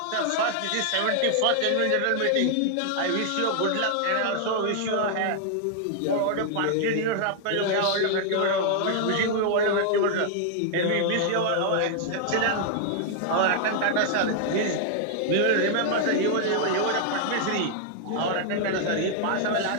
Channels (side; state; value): both; different; correlation 0.00